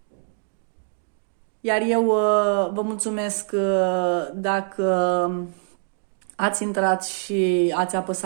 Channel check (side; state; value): left; silent; 63 dB below the other